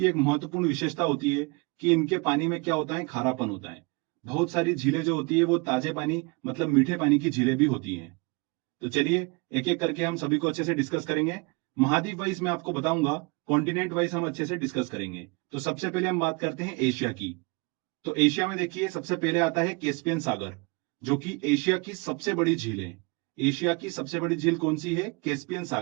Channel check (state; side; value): quieter; left; 28.7 dB